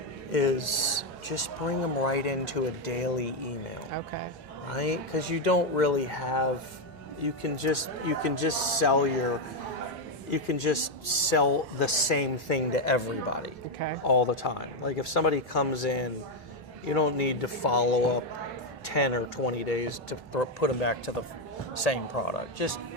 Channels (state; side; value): normal; both; correlation 0.04